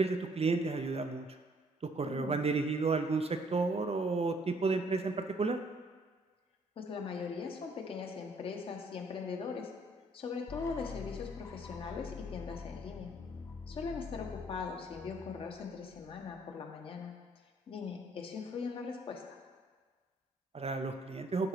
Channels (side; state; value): both; normal; correlation 0.64